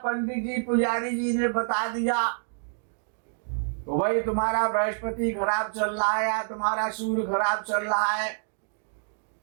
जी पुजारी जी ने बता दिया तो भाई तुम्हारा बृहस्पति खराब चल रहा है या तुम्हारा सूर्य खराब चल रहा है,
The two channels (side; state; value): left; silent; digital silence